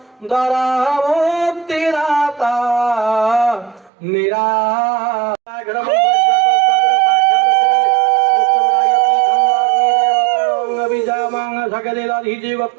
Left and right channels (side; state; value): left; drops out; at 3.9 s